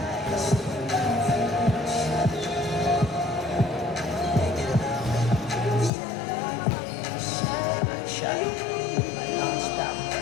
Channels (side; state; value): right; drops out; at 5.9 s